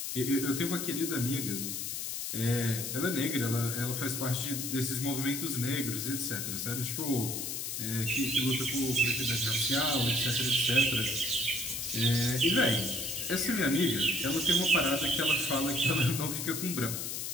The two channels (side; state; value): left; noise; hiss, 4 dB below the sound